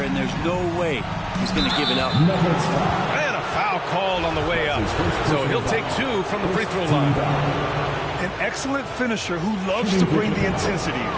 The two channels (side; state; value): both; identical; correlation 1.00